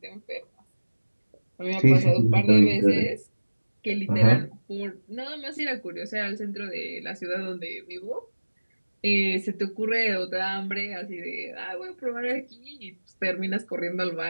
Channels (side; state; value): both; inverted; correlation -1.00